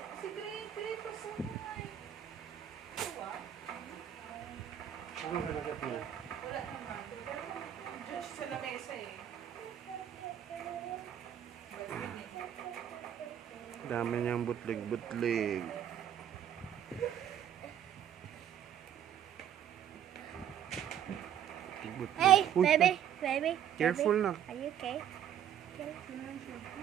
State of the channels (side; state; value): left; quieter; 9.9 dB